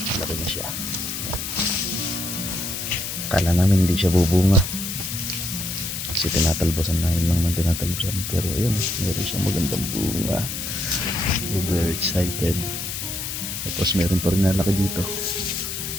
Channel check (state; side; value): noise; left; hiss, 5 dB below the sound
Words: Malaki na siya. Kala namin hindi siya bubunga. Kasi tinatalbosan namin lang ng tinatalbosan. Pero ayun, meron siyang magandang bunga. We're very excited. Tapos meron pa rin nalaki dito.